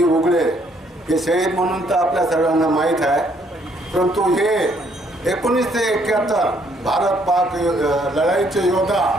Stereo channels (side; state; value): both; normal; correlation 0.68